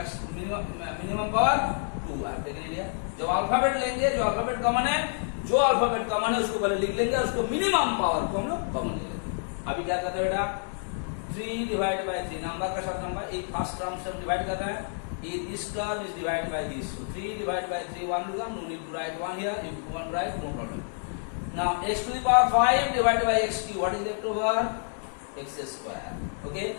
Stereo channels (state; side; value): silent; right; digital silence